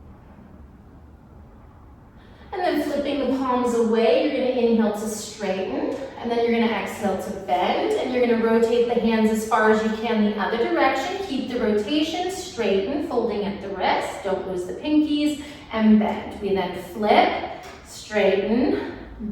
away, you're going to inhale to straighten, and then you're going to exhale to bend, and you're going to rotate the hands as far as you can the other direction. Keep the rotation, straighten, folding at the wrist, don't lose the pinkies, and bend. We then flip, straighten,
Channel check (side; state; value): both; identical; correlation 1.00